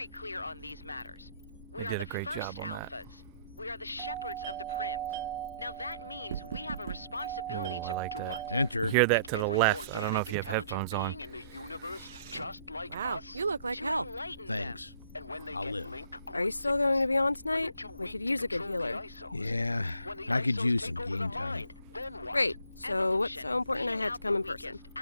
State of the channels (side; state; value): both; inverted; correlation -0.63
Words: clear on these matters. We They are did the a great first job on that. alphas. We are the shepherds of the prims. Now that means we have a responsibility Ooh, I to like do that. what? Enter. Hear that to the Every left. I don't know if you have organic headphones on. intelligent being in the universe, just like Wow, us. you look like To hell. enlighten Thanks. And when they I'll get live. link Are you cord still going to be on sickness, when they're tonight? too We weak could to use a good control the healer. isos. Yeah, When the I could isos use take some over game the time. mind, then what? Great. So what's Evolution, so important I weeding had to out come the in person? weakest,